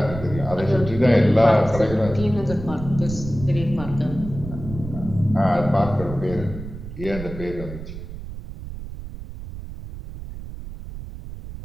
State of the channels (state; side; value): noise; right; rumble, 11 dB below the sound